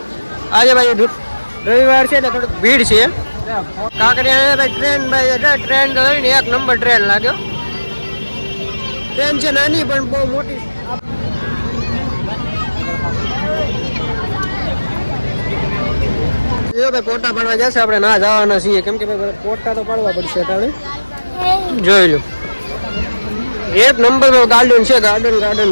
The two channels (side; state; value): both; inverted; correlation -1.00